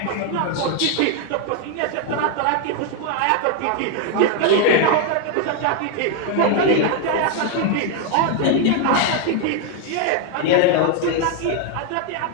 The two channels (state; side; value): different; both; correlation 0.00